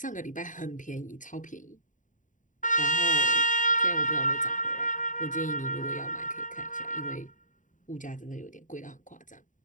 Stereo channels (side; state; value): right; late; 0.37 ms